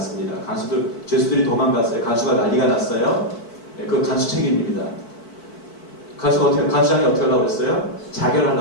죄수들이 도망갔어요. 간수가 난리가 났어요. 그 간수 책임입니다. 간수장이 어떻게 하려고 그랬어요?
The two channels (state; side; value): late; right; 4.5 ms